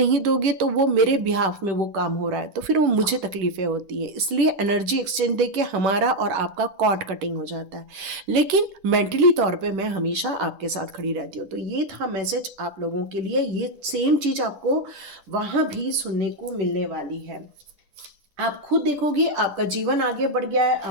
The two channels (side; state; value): left; late; 10 ms